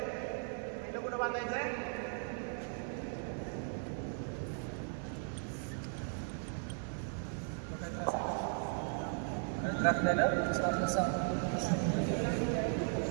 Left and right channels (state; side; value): silent; left; 53 dB below the other